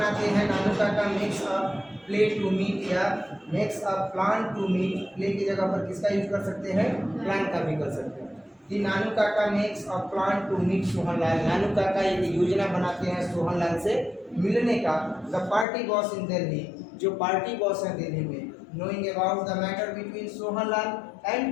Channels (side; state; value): right; drops out; at 15.7 s